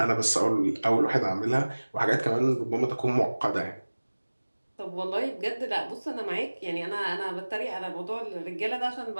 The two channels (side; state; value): both; inverted; correlation -1.00